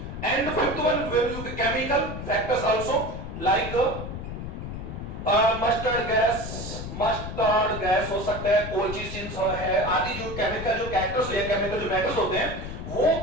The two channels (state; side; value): noise; left; rumble, 7 dB below the sound